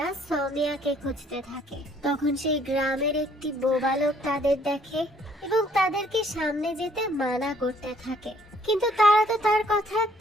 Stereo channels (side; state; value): both; normal; correlation 0.62